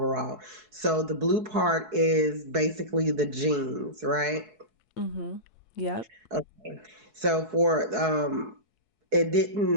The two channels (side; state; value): left; late; 4.7 ms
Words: So the blue part is basically the jeans, right? Hmm. Yep. Okay. So for it